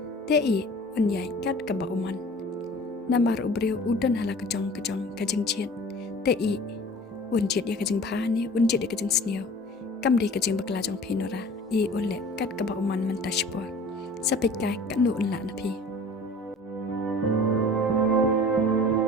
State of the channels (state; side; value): normal; both; correlation 0.44